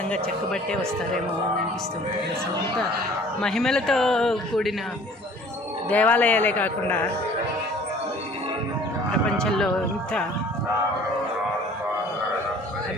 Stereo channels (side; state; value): both; normal; correlation 0.50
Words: చెక్కబట్టే వస్తారేమో అని అనిపిస్తుంది. అసలు అంత మహిమలతో కూడిన దేవాలయాలే కాకుండా ప్రపంచంలో ఇంత